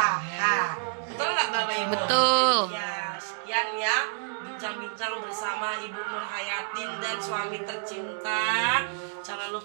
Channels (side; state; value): left; silent; digital silence